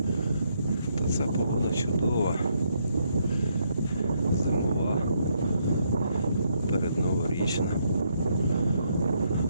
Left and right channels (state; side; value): inverted; both; correlation -0.74